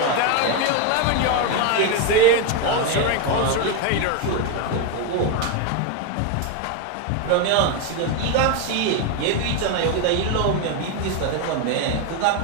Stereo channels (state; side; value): different; both; correlation 0.02